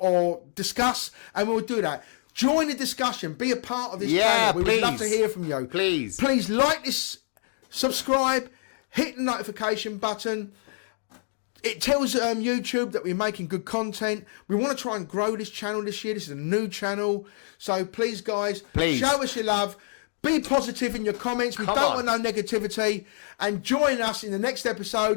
discuss, and we'll do that. Join the discussion. Be a part of this channel. We would love to hear from you. Please like this, subscribe, hit the notification button. It tells YouTube that we're making good content. We want to try and grow this channel this year. This is a new channel. So please, guys, show us your love. Be positive in your comments. We don't want no negativity. And join us in the next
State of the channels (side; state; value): right; silent; digital silence